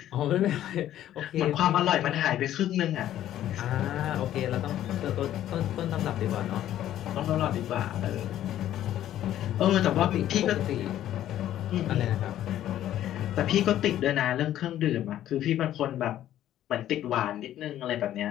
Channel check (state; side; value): quieter; right; 12.2 dB